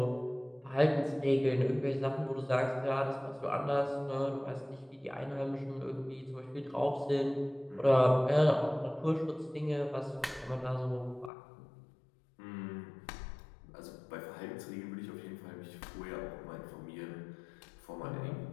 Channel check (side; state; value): right; drops out; at 11.3 s